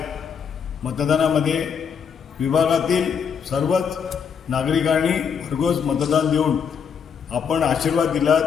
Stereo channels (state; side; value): quieter; right; 6.9 dB